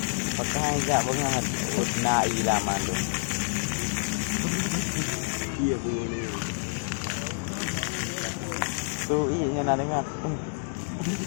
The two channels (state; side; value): silent; right; digital silence